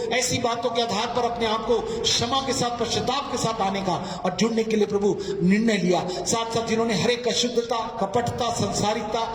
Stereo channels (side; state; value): both; identical; correlation 1.00